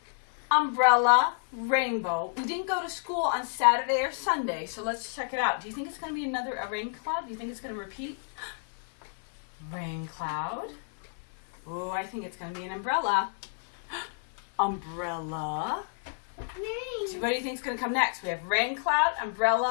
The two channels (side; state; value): right; silent; 58 dB below the other